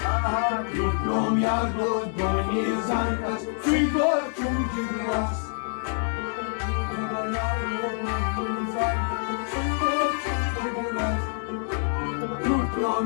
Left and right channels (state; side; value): silent; right; 61 dB below the other